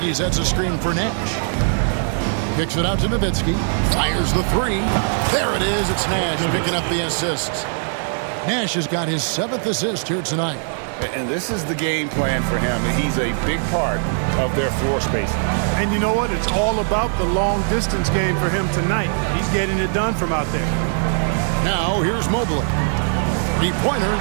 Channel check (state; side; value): silent; left; 57 dB below the other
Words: sets a screen for Nash. Kicks it out to Nowitzki. Fires the 3. There it is. It's Nash picking up the assists. Nash has got his 7th assist here tonight. And this is the game plan for him. He's a big part of their floor spacing. And you know what? It's all about the long distance game for him tonight. He's getting it done from out there. Now here's Mobley. 3-pointer.